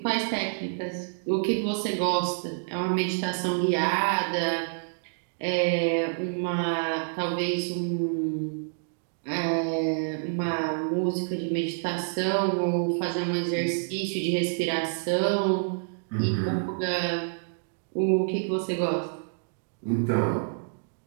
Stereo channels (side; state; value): left; silent; digital silence